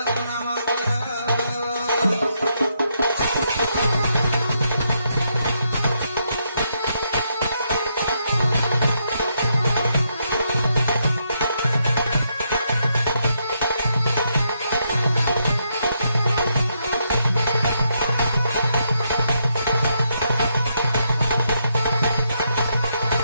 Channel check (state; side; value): inverted; both; correlation -0.78